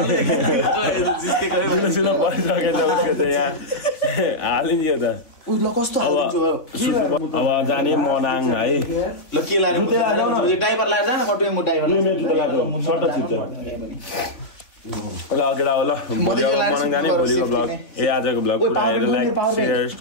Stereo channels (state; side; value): late; right; 3.5 ms